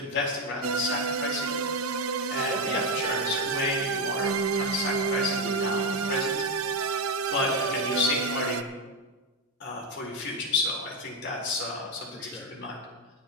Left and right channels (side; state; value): both; normal; correlation 0.06